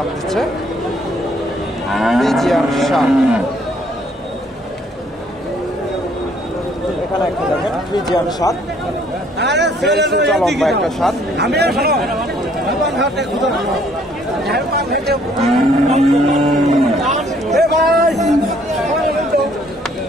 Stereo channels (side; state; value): both; normal; correlation 0.63